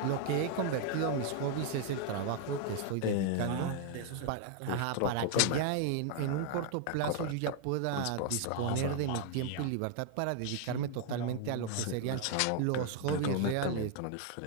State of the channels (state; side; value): different; both; correlation 0.00